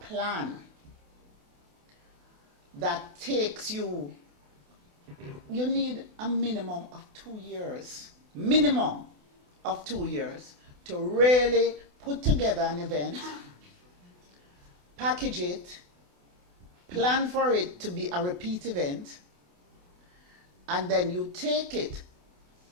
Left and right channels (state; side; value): late; left; 28 ms